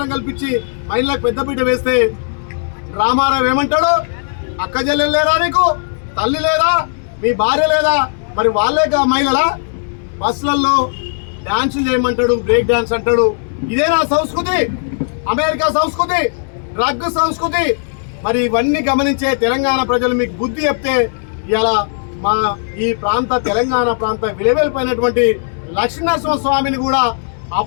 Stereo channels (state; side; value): silent; right; digital silence